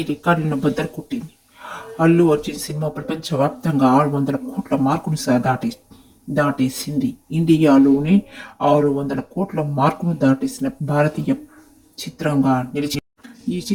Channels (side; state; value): both; identical; correlation 1.00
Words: రికార్డులను బద్దలు కొట్టింది. అల్లు అర్జున్ సినిమా ప్రపంచవ్యాప్తంగా 600 కోట్ల మార్కును దాటేసింది. ఇండియాలోనే 600 కోట్ల మార్కును దాటేసిన భారతీయ చిత్రంగా నిలిచింది. ఈ